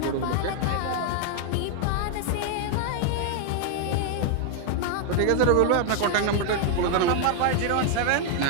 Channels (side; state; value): both; different; correlation 0.00